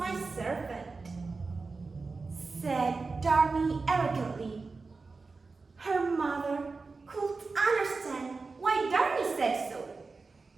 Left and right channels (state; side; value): quieter; left; 4.1 dB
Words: servant," said Darmi arrogantly. Her mother couldn't understand why Darmi said so,